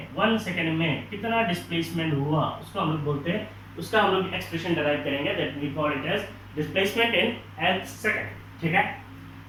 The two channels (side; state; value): both; identical; correlation 1.00